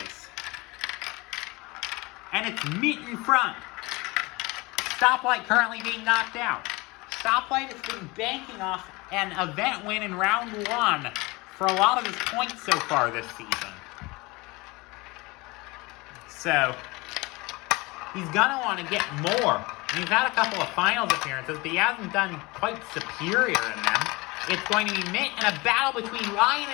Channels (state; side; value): quieter; right; 23.8 dB